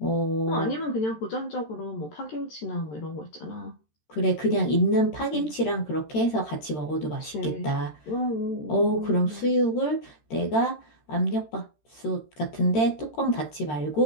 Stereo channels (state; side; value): late; right; 13 ms